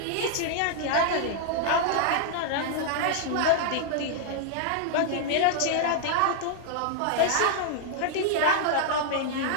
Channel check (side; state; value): both; different; correlation -0.01